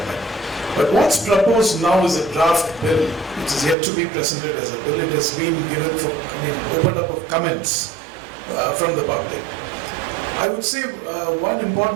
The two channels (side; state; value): left; drops out; at 3.8 s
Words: But what's proposed now is a draft bill, which is yet to be presented as a bill. It has been given for, opened up of comments from the public. I would say one